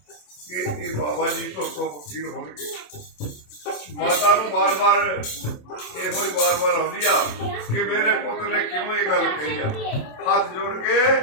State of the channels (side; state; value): right; late; 27 ms